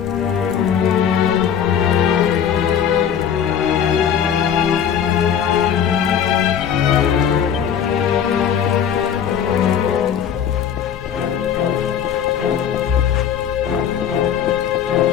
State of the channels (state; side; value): quieter; right; 8.6 dB